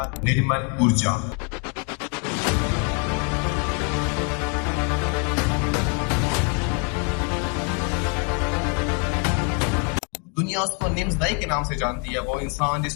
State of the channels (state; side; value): quieter; right; 35.2 dB